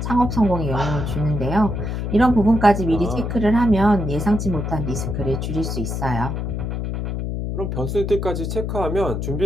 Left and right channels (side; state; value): left; noise; hum, 3 dB below the sound